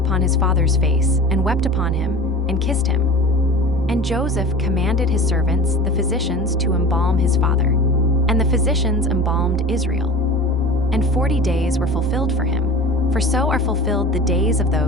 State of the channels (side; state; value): both; normal; correlation 0.38